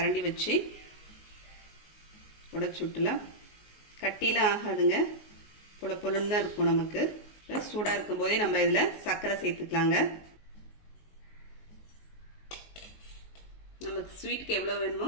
வச்சு உடைச்சு விட்டுலாம். கட்டிலாம் ஆகாதுங்க, பொழுன்னு தான் இருக்கும். நமக்கு சூடாக இருக்கும் போதே நம்ம இதில் சர்க்கரை சேர்த்துக்கலாங்க. நமக்கு ஸ்வீட்டுக்கு எவ்வளோ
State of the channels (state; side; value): late; right; 19 ms